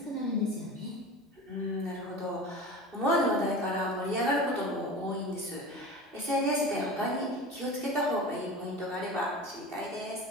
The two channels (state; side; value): normal; both; correlation 0.33